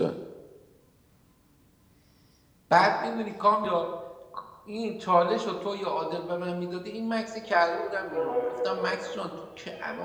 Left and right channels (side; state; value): both; identical; correlation 1.00